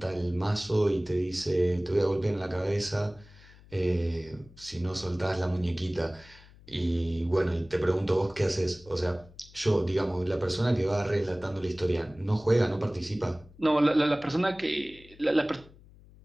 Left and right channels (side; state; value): left; noise; hum, 23 dB below the sound